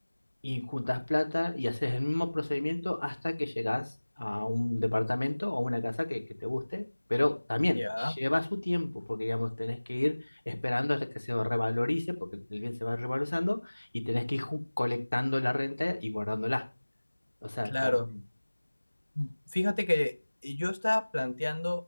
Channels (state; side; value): inverted; both; correlation -1.00